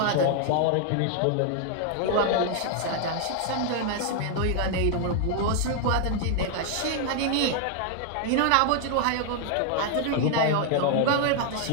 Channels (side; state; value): both; different; correlation 0.00